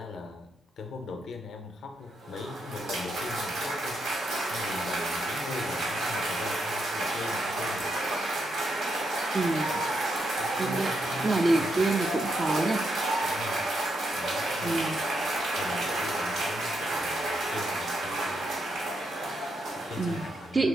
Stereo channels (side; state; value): both; normal; correlation 0.81